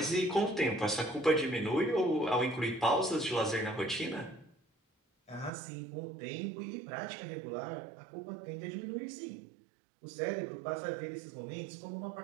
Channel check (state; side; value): drops out; left; at 5.5 s